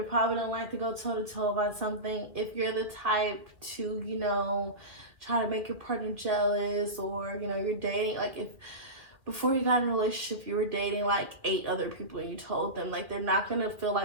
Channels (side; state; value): left; late; 2.5 ms